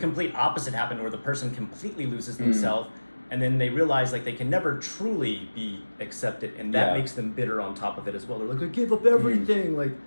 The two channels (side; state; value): both; inverted; correlation -1.00